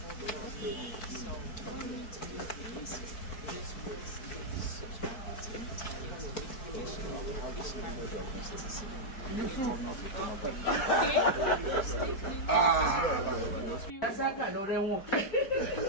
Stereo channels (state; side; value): late; right; 4.6 ms